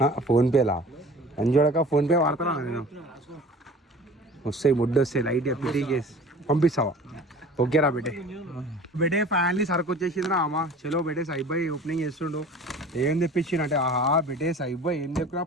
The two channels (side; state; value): both; normal; correlation 0.43